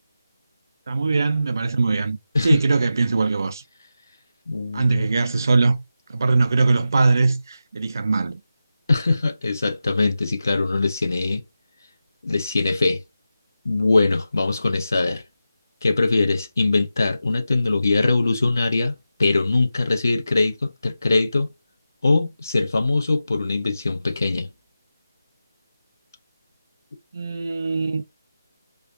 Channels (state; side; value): inverted; both; correlation -0.91